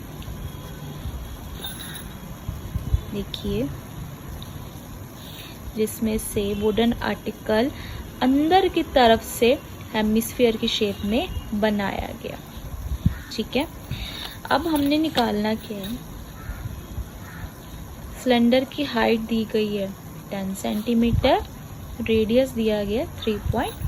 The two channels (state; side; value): identical; both; correlation 1.00